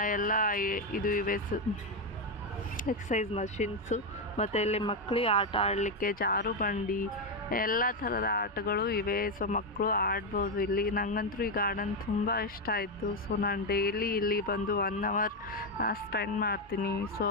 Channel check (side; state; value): both; normal; correlation 0.06